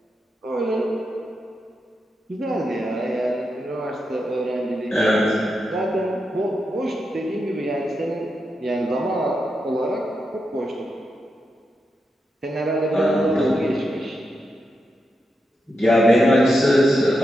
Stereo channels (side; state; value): both; normal; correlation 0.86